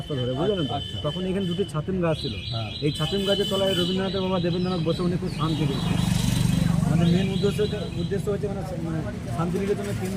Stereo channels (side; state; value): both; identical; correlation 1.00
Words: ধরে, বুঝলেন তো? তখন এখানে 2টি ছাতিম গাছ ছিল। এই ছাতিম গাছের তলায় রবীন্দ্রনাথের বাবা দেবেন্দ্রনাথ বসে উনি খুব শান্তি পেয়েছেন। আমাদের মেন উদ্দেশ্য হচ্ছে মানে শান্তিনিকেতনের